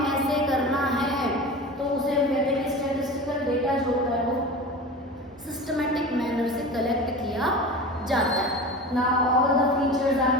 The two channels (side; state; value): both; normal; correlation 0.32